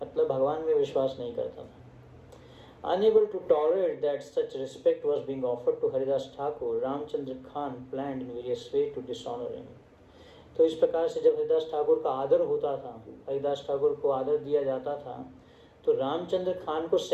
मतलब भगवान में विश्वास नहीं करता था. Unable to tolerate that such respect was being offered to Haridas Thakur, Ramchandra Khan planned in various ways to dishonor him. तो इस प्रकार से जब हरिदास ठाकुर का आदर होता था, हरिदास ठाकुर को आदर दिया जाता था, तो रामचंद्र खान को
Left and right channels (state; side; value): identical; both; correlation 1.00